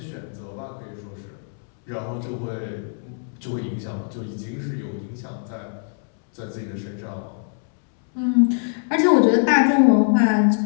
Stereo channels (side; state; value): right; silent; 63 dB below the other